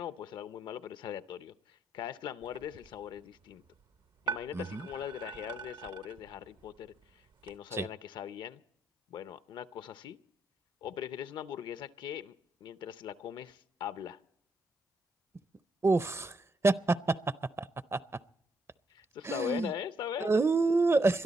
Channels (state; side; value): normal; both; correlation 0.77